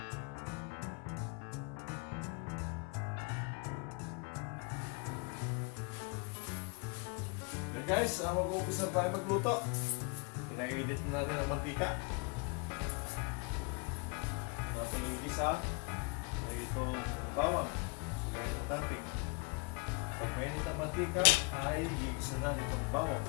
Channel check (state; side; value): quieter; right; 32.5 dB